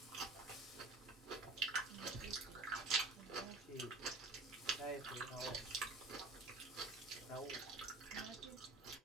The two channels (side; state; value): left; quieter; 3.4 dB